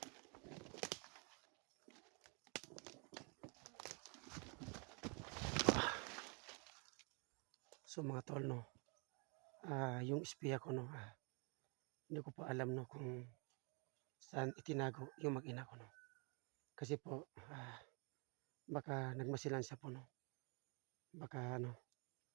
So mga tol, no, yung espiya ko, no, hindi ko pa alam, no, kung saan itinago yung mag-ina ko, no. Kasi po, baka nagmasilan siya po, no. Baka ano,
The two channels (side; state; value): left; quieter; 34.5 dB